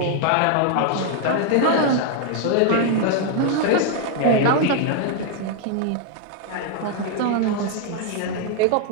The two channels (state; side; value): different; both; correlation 0.00